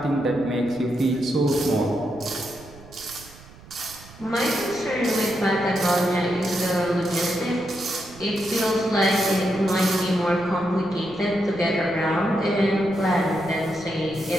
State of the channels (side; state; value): right; noise; rumble, 21 dB below the sound